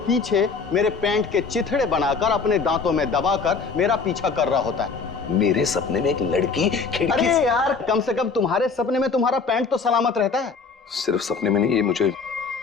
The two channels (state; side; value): quieter; right; 4.9 dB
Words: पीछे मेरे पैंट के चिथड़े बनाकर अपने दांतों में दबाकर मेरा पीछा कर रहा होता है। मेरे सपने में एक लड़की खिड़की अरे यार, कम से कम तुम्हारे सपने में तुम्हारा पैंट तो सलामत रहता है। सिर्फ सपने में नहीं, ये मुझे